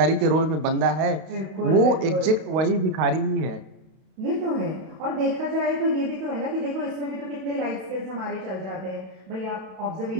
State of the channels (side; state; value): left; late; 32 ms